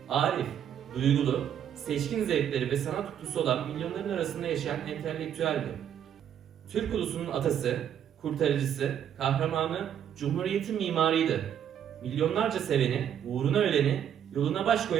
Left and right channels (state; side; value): quieter; left; 9.4 dB